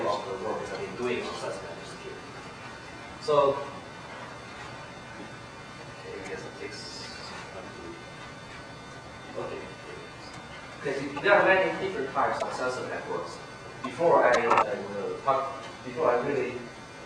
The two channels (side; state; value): both; identical; correlation 1.00